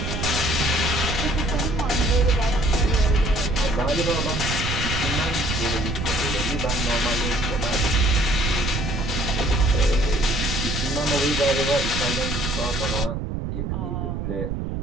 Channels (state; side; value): noise; right; rumble, 3 dB below the sound